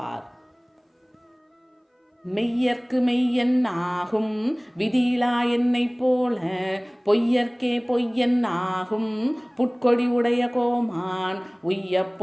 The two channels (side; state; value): both; identical; correlation 1.00